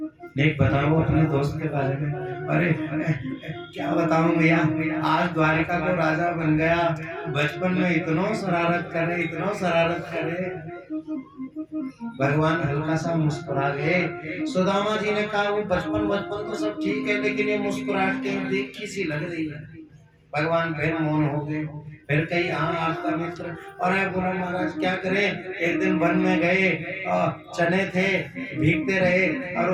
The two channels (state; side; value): identical; both; correlation 1.00